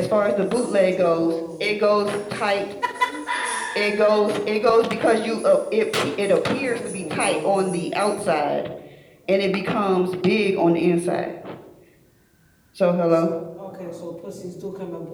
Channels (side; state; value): both; identical; correlation 1.00